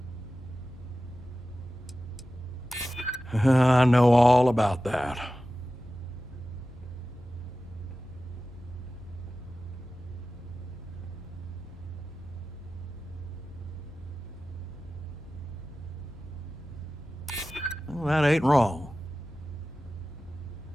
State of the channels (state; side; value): normal; both; correlation 0.95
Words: I know all about that. Well, that ain't wrong.